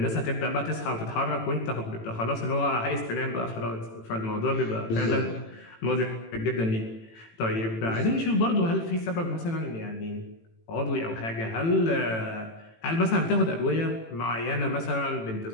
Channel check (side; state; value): right; late; 18 ms